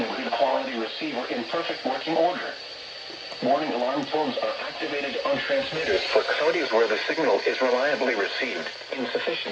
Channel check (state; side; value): identical; both; correlation 1.00